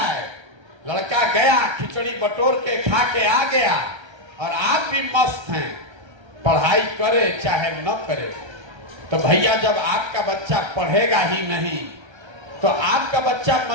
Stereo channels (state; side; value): late; left; 1.3 ms